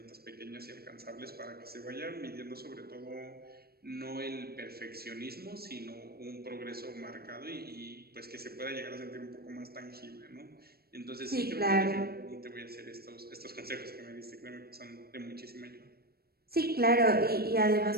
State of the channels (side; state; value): left; late; 0.45 ms